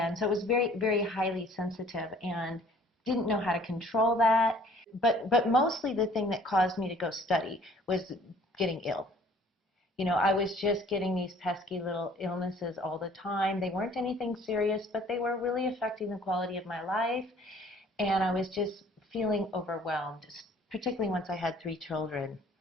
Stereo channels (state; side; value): normal; both; correlation 0.55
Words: so it was very, very highly sensitive and didn't know how to control that. But mostly the thing that caused me to go study was getting ill. You know, I was just getting these pesky little illnesses all the time. They weren't anything serious, but they were really affecting the quality of my life. And I was just feeling overwhelmed, particularly once I had 3 children.